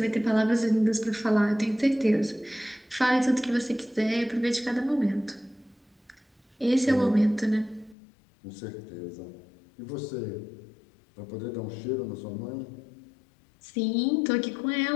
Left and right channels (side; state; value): right; drops out; at 8.0 s